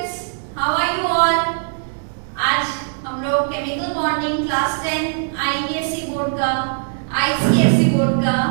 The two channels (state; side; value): silent; left; digital silence